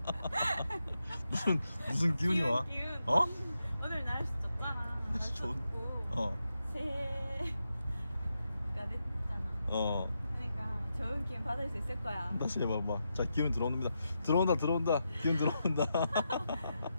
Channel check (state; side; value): inverted; both; correlation -0.86